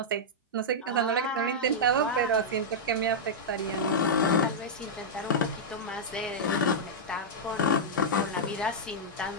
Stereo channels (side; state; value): both; normal; correlation -0.08